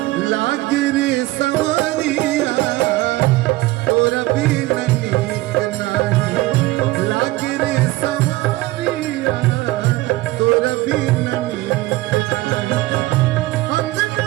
लागे रे सवरिया तोरा बीन नीक नाही लागे रे सवरिया तोरा बीन नीक नाही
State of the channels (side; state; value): left; quieter; 18.8 dB